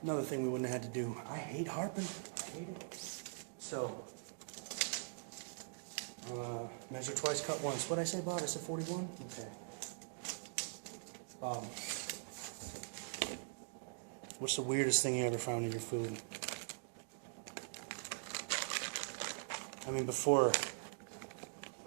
Another thing we wouldn't have had to do, I hate harping. I hate it. So, measure twice, cut once. What'd I say, Bob? I said 41? Okay. Bob, what's the weirdest thing you ever found in your food? I mean, before,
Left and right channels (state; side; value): silent; left; digital silence